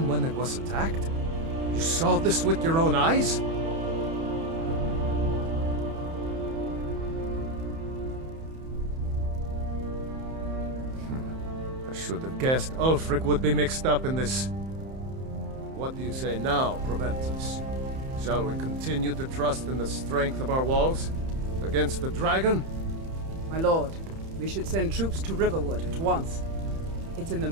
when it was attacked? You saw this with your own eyes? I should have guessed Ulfric would be mixed up in this. What do you say now, Proventus? Shall we continue to trust in the strength of our walls? Against the dragon? My lord, we should send troops to Riverwood at once. It's in the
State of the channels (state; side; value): late; left; 31 ms